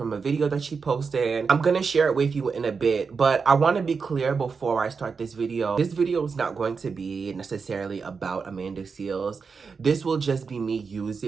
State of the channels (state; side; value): quieter; left; 5.3 dB